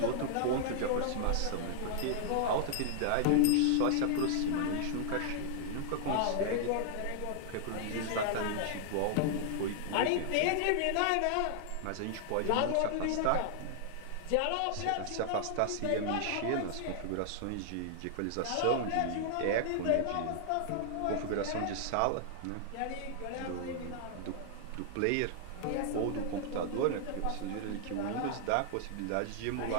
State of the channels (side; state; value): both; different; correlation -0.01